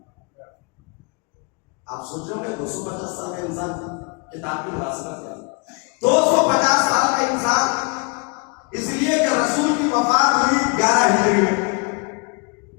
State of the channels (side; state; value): right; quieter; 33.7 dB